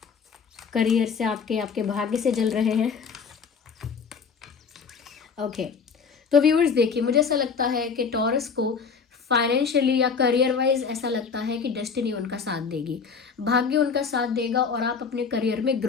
करियर से आपके भाग्य से जल रहे हैं। ओके, तो व्यूअर्स देखिए, मुझे ऐसा लगता है कि टॉरस को फाइनेंशियली या करियर वाइज ऐसा लगता है कि डेस्टिनी उनका साथ देगी, भाग्य उनका साथ देगा, और आप अपने करियर में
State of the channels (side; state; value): right; quieter; 5.7 dB